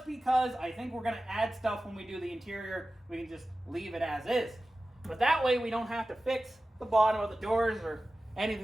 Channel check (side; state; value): both; normal; correlation 0.95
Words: because I think we're gonna add stuff when we do the interior. We can just leave it as is. But that way we don't have to fix the bottom of the doors or